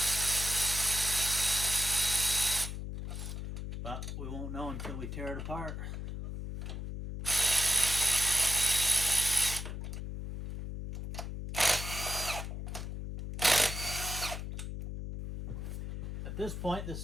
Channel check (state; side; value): noise; left; hum, 6 dB below the sound